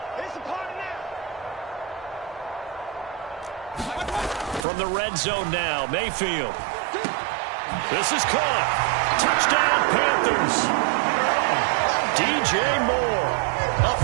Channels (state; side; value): drops out; left; at 4.7 s